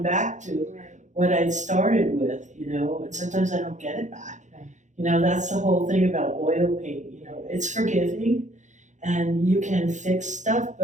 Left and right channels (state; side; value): late; left; 0.35 ms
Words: back to what I'd started with, you know, and sometimes I don't get it back. Right. You know, that's the whole thing about oil paint, you know, it's forgiving and you can fix stuff,